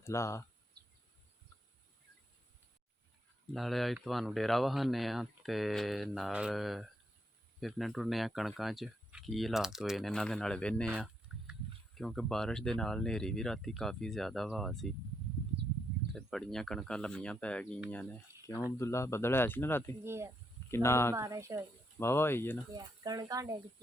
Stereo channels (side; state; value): both; normal; correlation 0.78